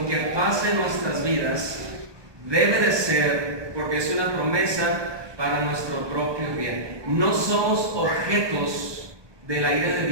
que pase en nuestras vidas debe de ser, porque es una promesa, para nuestro propio bien. No somos objetos de la ira de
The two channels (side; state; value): left; late; 1.2 ms